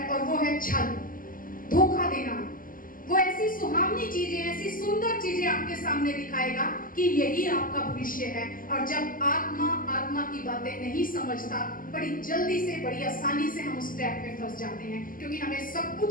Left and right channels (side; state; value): right; late; 0.41 ms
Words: और वो है छल, धोखा देना। वो ऐसी सुहावनी चीजें, ऐसी सुंदर चीजें आपके सामने दिखाएगा कि यही आपका भविष्य है। और जब आत्मा आत्मा की बातें नहीं समझता, बड़ी जल्दी से, बड़ी आसानी से हम उस ट्रैप में फंस जाते हैं, क्योंकि हमें सब